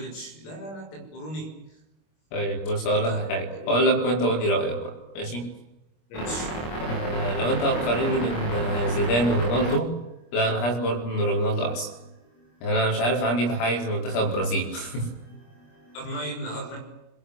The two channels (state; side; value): late; right; 25 ms